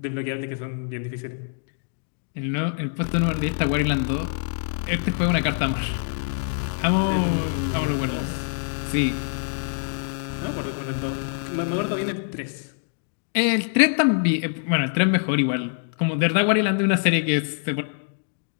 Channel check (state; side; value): silent; right; digital silence